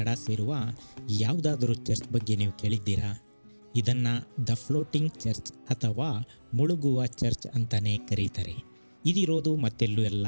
ಸೇರುವ ಯಾವುದಾದರೂ ಚರ್ಚ್ ಬಗ್ಗೆ ನೀವು ಕೇಳಿದ್ದೀರಾ? ಇದನ್ನು ದ ಫ್ಲೋಟಿಂಗ್ ಚರ್ಚ್ ಅಥವಾ ಮುಳುಗುವ ಚರ್ಚ್ ಅಂತಲೇ ಕರೀತಾರೆ. ಇದಿರೋದು ಮತ್ತೆಲ್ಲೂ ಅಲ್ಲ,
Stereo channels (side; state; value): both; inverted; correlation -1.00